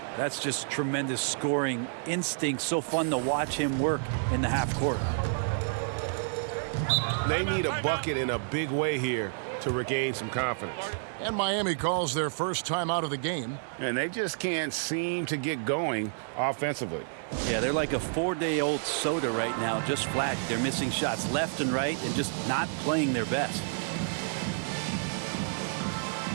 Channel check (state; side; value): silent; left; digital silence